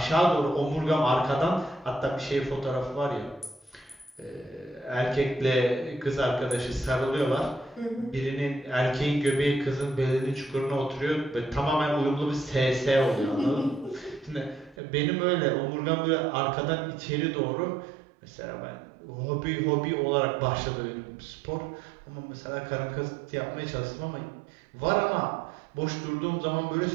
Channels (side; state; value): left; drops out; at 14.8 s